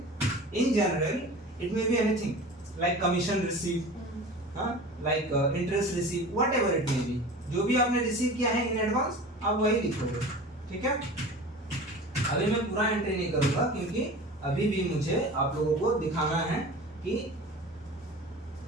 in general it may be anything like commission receive, हाँ, like interest receive, whatever it may be, जो भी आपने रिसीव किया है इन एडवांस आप वही लिखोगे, ठीक है। अभी मैं पूरा एंट्री नहीं करूंगा क्योंकि अभी भी मुझे आप लोगों को दिखाना है कि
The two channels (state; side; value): normal; both; correlation 0.37